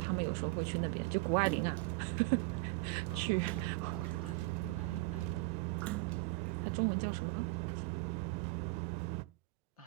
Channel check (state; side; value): quieter; left; 22.2 dB